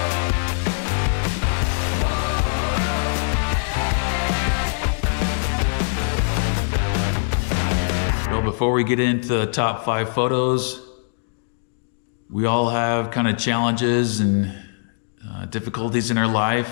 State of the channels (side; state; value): right; silent; digital silence